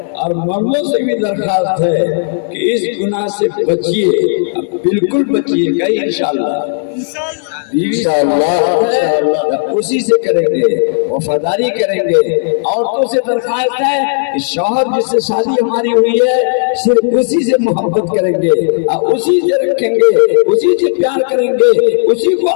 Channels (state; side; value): silent; right; digital silence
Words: और मर्दों से भी दरखास्त है कि इस गुनाह से बचिए, बिल्कुल बचिएगा इंशाअल्लाह। इंशाअल्लाह उसी से करेंगे, वफादारी करेंगे। औरतों से दरखास्त है कि शौहर जिससे शादी हमारी हुई है सिर्फ उसी से मोहब्बत करेंगे, उसी से रखेंगे, उसी से प्यार करेंगे, उसी को